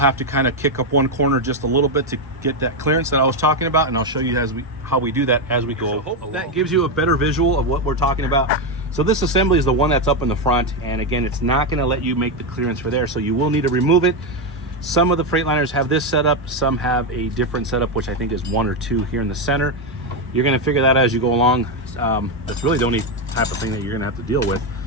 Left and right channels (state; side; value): normal; both; correlation 0.07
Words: to kind of kick up one corner just a little bit to get that clearance that I was talking about, and I'll show you how we do that as we go. So hope that gives you a better visual of what we're talking about. So this assembly is the one that's up in the front, and again, it's not going to let you make the clearance for there, so you will need to remove it. Some of the Freightliners have this setup, some have a different setup, which I think is 1 or 2 here in the center. You're going to figure that out as you go along. That's really the only type of thing that you're going to have to deal with.